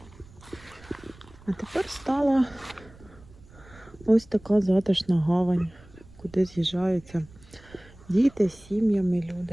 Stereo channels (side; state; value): right; noise; rumble, 23 dB below the sound